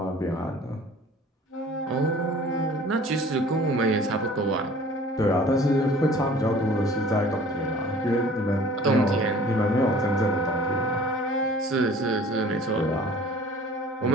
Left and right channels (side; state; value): both; normal; correlation 0.48